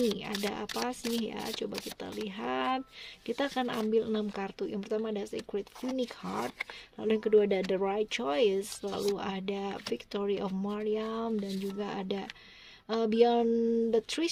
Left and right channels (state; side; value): identical; both; correlation 1.00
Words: Ada apa sih ya, coba kita lihat. Kita akan ambil 6 kartu. Yang pertama ada Sacred Phoenix Heart, lalu yang kedua ada The Right Choice, lalu ada Victory of Mariam, dan juga ada Beyond the